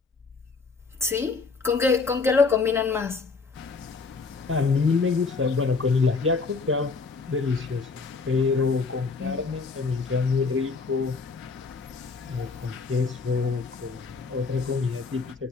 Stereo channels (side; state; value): right; quieter; 4.4 dB